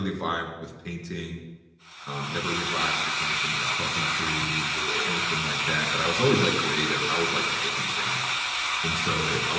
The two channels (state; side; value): identical; both; correlation 1.00